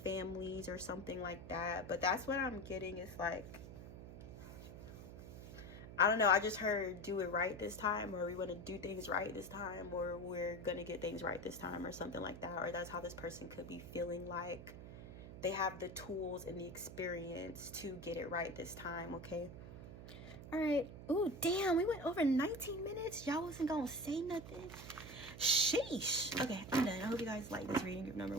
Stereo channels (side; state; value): right; noise; hum, 12 dB below the sound